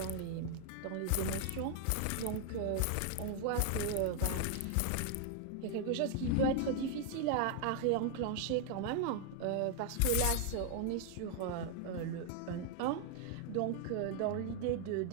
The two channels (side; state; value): both; different; correlation 0.00